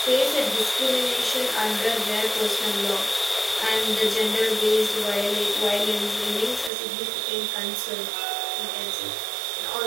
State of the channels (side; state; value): left; drops out; at 6.7 s